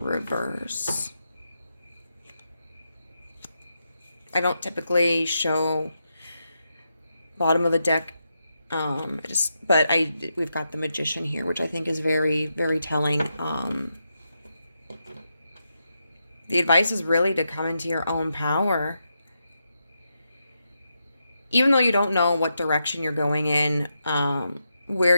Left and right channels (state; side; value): inverted; both; correlation -0.85